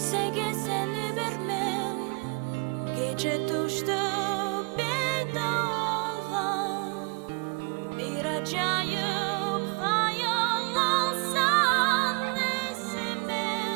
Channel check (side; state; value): left; quieter; 30.3 dB